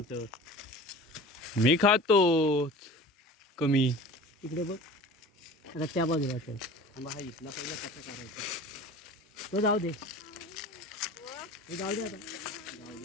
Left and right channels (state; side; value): normal; both; correlation 0.39